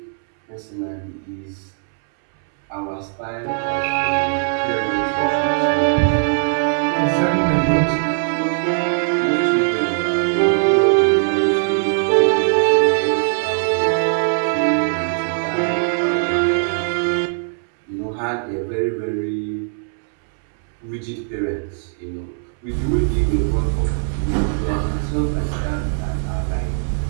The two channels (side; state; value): left; silent; 66 dB below the other